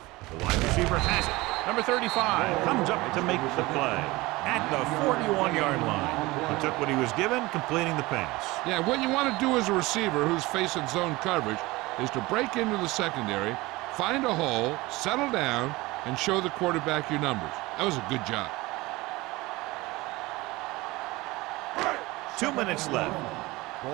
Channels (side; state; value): left; quieter; 21.0 dB